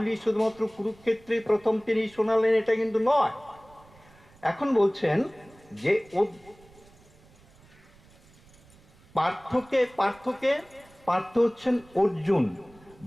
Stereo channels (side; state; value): right; noise; rumble, 27 dB below the sound